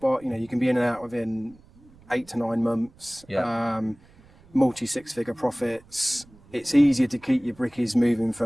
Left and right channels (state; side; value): noise; right; rumble, 27 dB below the sound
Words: You can be in and out within 8 to 9 months. Yeah. Multi 6-figure profits. It's easier to keep your brickies moving